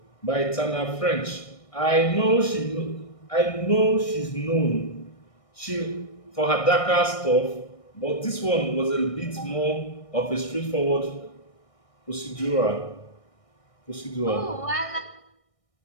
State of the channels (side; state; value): right; late; 1.6 ms